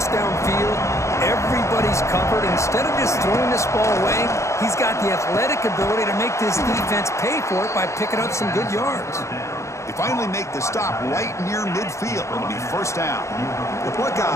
downfield, everybody's covered. Instead of just throwing this ball away, he's got the athletic ability to make this defense pay for it by picking up some good yards. They finally make the stop right near midfield. It'll be 1st down. The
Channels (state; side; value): late; right; 0.14 ms